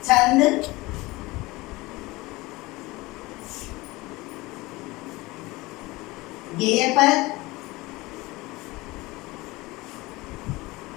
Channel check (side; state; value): right; quieter; 21.4 dB